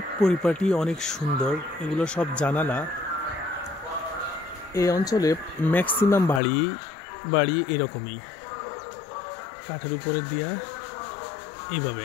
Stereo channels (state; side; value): drops out; right; at 6.4 s